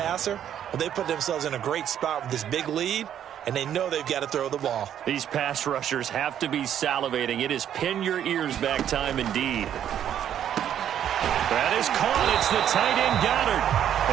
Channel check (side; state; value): left; quieter; 10.0 dB